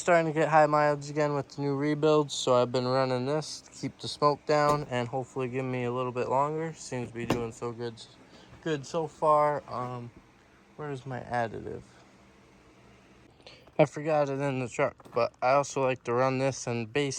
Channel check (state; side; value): identical; both; correlation 1.00